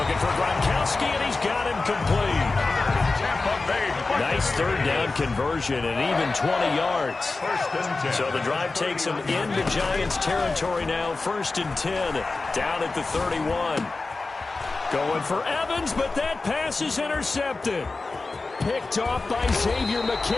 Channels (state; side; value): quieter; right; 3.6 dB